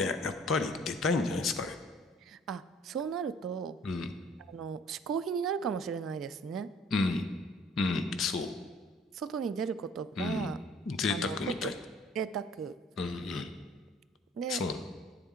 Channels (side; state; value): both; normal; correlation 0.55